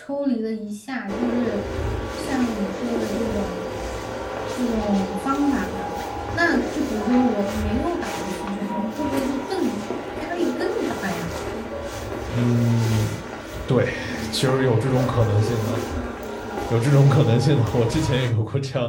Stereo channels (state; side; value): identical; both; correlation 1.00